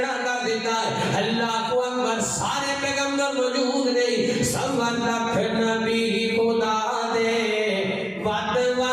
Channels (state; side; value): identical; both; correlation 1.00